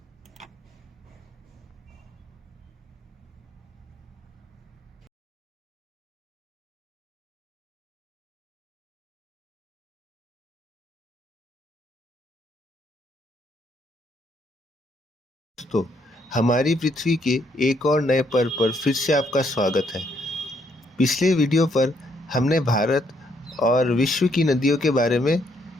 दोस्तों, हमारी पृथ्वी के एक और नए पर्व पर फिर से आपका स्वागत है। पिछले वीडियो पर हमने भारत और विश्व की नदियों के बारे में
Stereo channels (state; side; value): normal; both; correlation 0.72